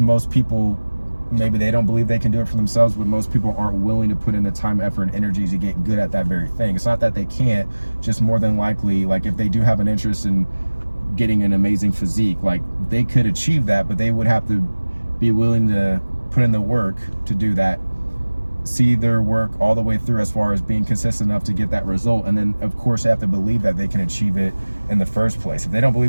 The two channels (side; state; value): both; inverted; correlation -1.00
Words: people, maybe they don't believe they can do it for themselves, but most people aren't willing to put in the time, effort, and energy to get good at that very thing. It's not that they can't, just more than likely, like if they do have an interest in getting an amazing physique, like they could achieve that, but they would have to be willing to put in the work to do that, see their work all the way through as far as being consistent enough to get that result. And then of course they have to believe that they can achieve it in the first place. If they don't